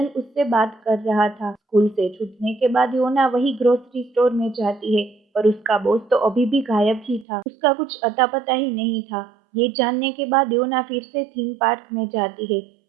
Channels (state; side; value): drops out; left; at 7.2 s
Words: उससे बात कर रहा था। स्कूल से छूटने के बाद योना वही ग्रोसरी स्टोर में जाती है, पर उसका बॉस तो अभी भी गायब ही था। उसका कुछ अता पता ही नहीं था। ये जानने के बाद योना फिर से थीम पार्क में जाती है।